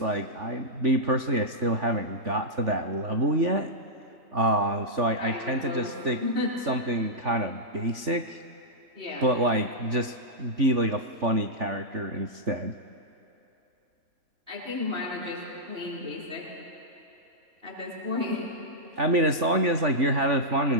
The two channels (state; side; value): late; left; 3.5 ms